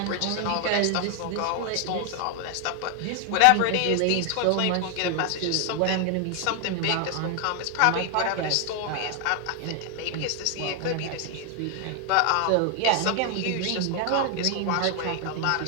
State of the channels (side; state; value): both; different; correlation 0.00